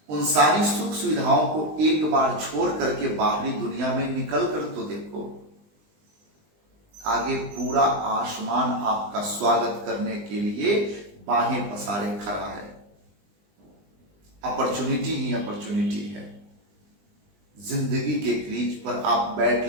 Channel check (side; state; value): left; late; 20 ms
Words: उन सारी सुख सुविधाओं को एक बार छोड़ करके बाहरी दुनिया में निकल कर तो देखो। आगे पूरा आसमान आपका स्वागत करने के लिए बाहें पसारे खड़ा है। अपॉर्चुनिटी ही अपॉर्चुनिटी है। जिंदगी के क्रीज पर आप बैट